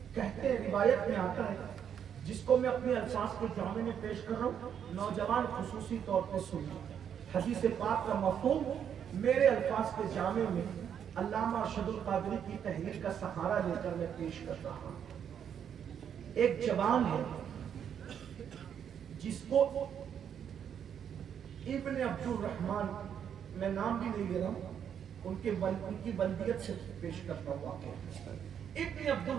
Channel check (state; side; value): quieter; left; 8.5 dB